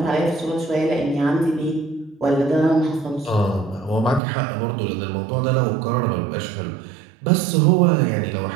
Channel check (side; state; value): left; drops out; at 4.2 s